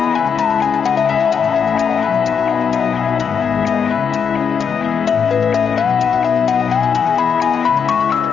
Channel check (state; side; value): quieter; right; 6.6 dB